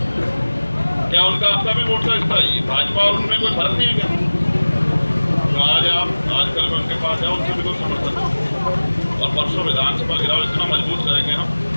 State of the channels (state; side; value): inverted; both; correlation -1.00